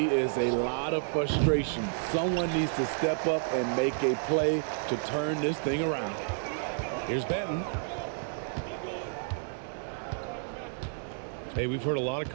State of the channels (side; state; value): left; silent; digital silence